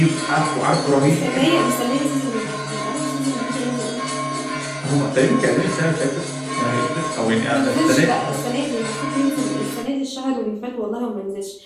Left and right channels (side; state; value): both; identical; correlation 1.00